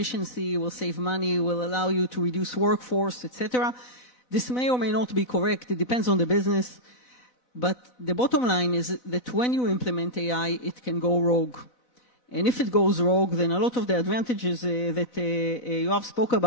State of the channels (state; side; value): late; right; 4.0 ms